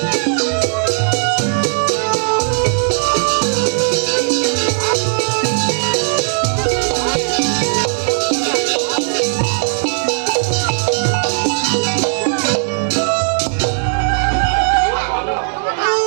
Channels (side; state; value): left; silent; 69 dB below the other